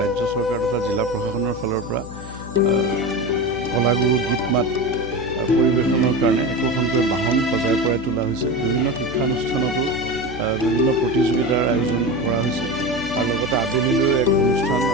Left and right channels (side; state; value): left; noise; hum, 14 dB below the sound